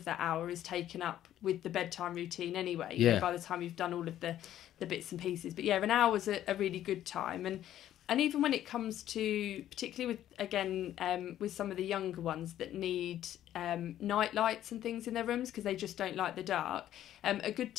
that hour is taken up with the bedtime routine anyway, you know, by the time you've done all of the bits and pieces. But yeah, an hour's a really good time. And even when it comes to, particularly with, again, with some of the younger ones that need night lights and things in their rooms because they just don't like the dark, a good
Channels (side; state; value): right; quieter; 12.0 dB